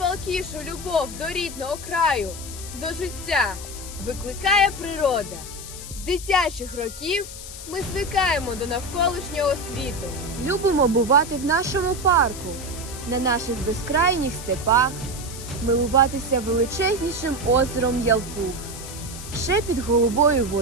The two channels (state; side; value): noise; left; hiss, 12 dB below the sound